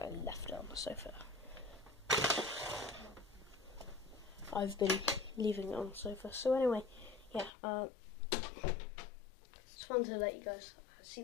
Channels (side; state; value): right; drops out; at 7.5 s